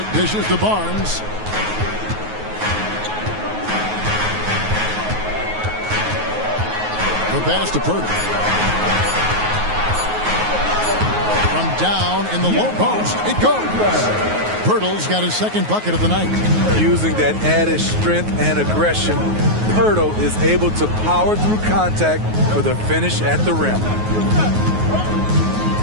dishes to Barnes. The pass to Poeltl. From down in the low post, it goes. Poeltl's got his second bucket of the night. Using that added strength and aggression, Poeltl is able to power through contact for the finish at the rim.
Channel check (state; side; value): late; left; 9.4 ms